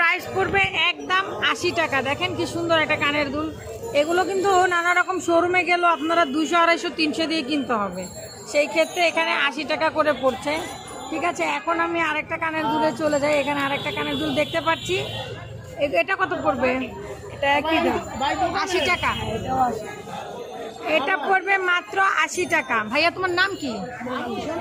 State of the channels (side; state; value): both; identical; correlation 1.00